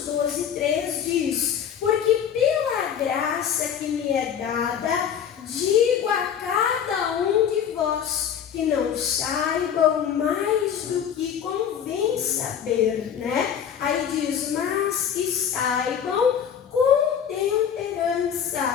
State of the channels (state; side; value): quieter; right; 8.4 dB